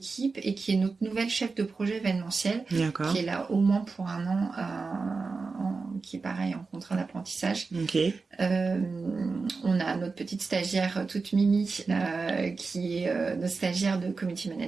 et qui est notre nouvelle chef de projet événementiel, qui est là au moins pour un an, qui est pareil en contrat d'apprentissage. On a notre petite stagiaire toute mimi, qui est notre stagiaire de community management.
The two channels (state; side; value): quieter; left; 4.3 dB